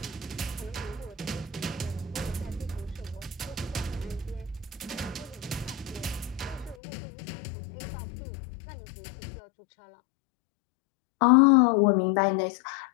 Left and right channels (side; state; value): right; drops out; at 6.8 s